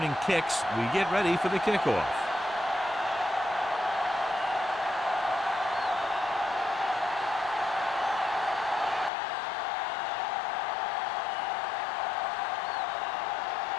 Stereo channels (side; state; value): right; drops out; at 9.1 s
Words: kicks, we get ready for the kickoff.